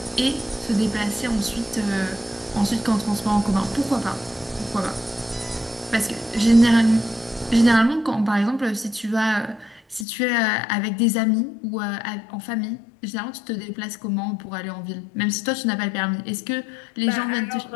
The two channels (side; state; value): right; drops out; at 10.1 s